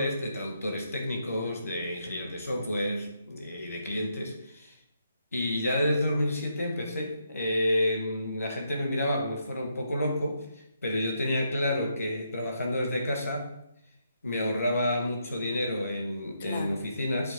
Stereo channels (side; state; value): both; inverted; correlation -0.78